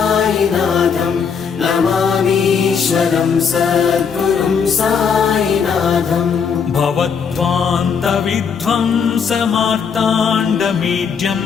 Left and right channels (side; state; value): right; quieter; 6.4 dB